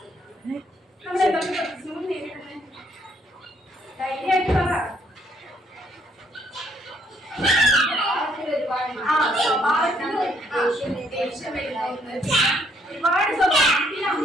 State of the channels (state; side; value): normal; both; correlation 0.68